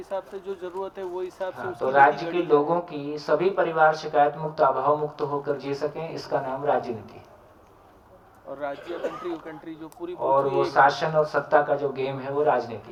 से जो जरूरत है वो हिसाब से तो राज्य के लोगों की सभी परिवार शिकायत मुक्त अभाव मुक्त होकर जी सकें, इसका नाम राजनीति। और राज्य कंट्री जो पूरी और वो शासन और सत्ता का जो गेम है वो राजनीति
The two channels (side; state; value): both; identical; correlation 1.00